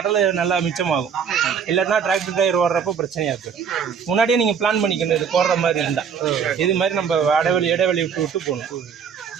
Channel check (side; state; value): left; quieter; 6.9 dB